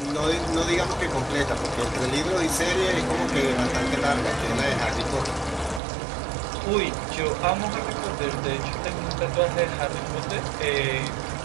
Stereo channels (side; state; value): left; drops out; at 5.8 s